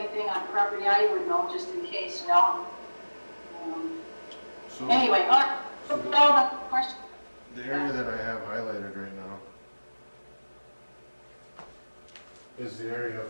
on property I would know, just in case, you know. So Anyway, all the questions. the area that I have highlighted right now is the area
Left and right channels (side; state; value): both; inverted; correlation -1.00